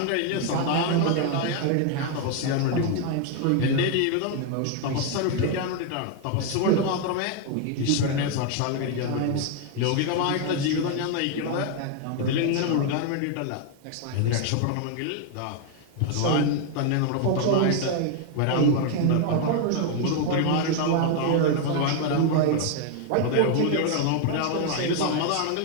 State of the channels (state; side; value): different; both; correlation 0.01